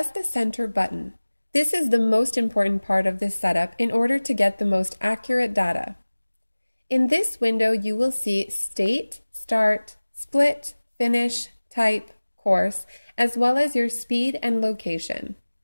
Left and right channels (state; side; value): inverted; both; correlation -1.00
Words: the center button. This is the most important part of this setup in order to get the most accurate data. In this window, you will see State, Start, Split, Finish, Type, Course, as well as your speed and location.